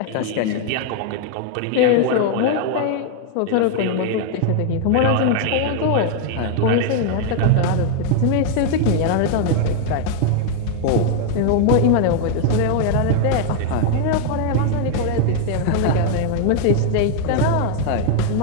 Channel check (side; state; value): both; different; correlation 0.00